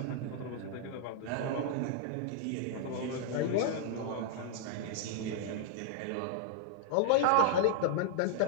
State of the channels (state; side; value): different; both; correlation -0.01